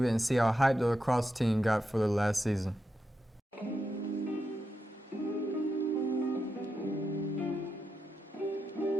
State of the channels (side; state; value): both; normal; correlation 0.86